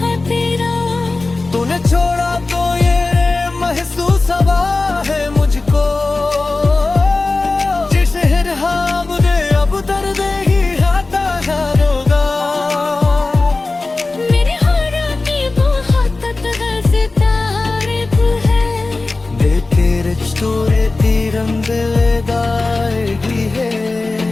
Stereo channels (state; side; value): quieter; right; 3.4 dB